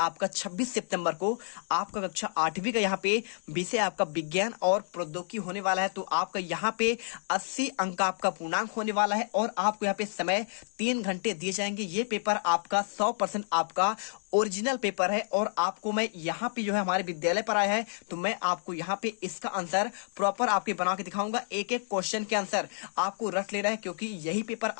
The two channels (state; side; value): silent; right; digital silence